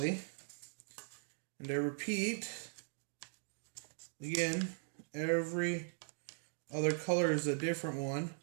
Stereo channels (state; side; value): silent; left; digital silence